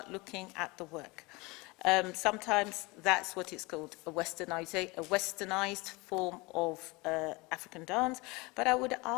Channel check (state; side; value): quieter; right; 25.0 dB